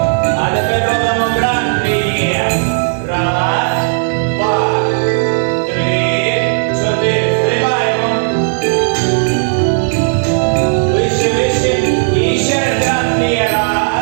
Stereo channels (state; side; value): silent; left; digital silence